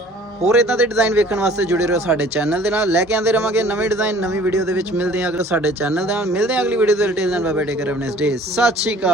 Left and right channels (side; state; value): both; normal; correlation 0.51